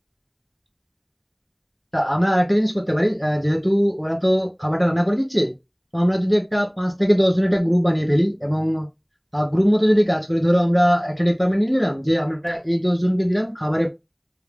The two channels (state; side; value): identical; both; correlation 1.00